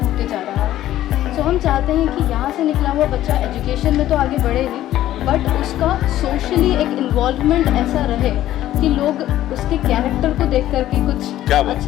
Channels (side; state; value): right; quieter; 13.4 dB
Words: होते जा रहा है। तो हम चाहते हैं कि यहाँ से निकला हुआ बच्चा एजुकेशन में तो आगे बढ़े ही, बट उसका सोशली एक इन्वॉल्वमेंट ऐसा रहे कि लोग उसके कैरेक्टर को देख करके कुछ